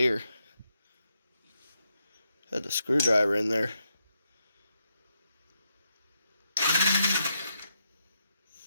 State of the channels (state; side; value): inverted; both; correlation -0.82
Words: Had the screwdriver in there.